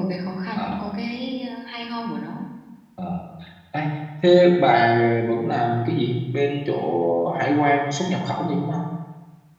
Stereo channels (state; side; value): identical; both; correlation 1.00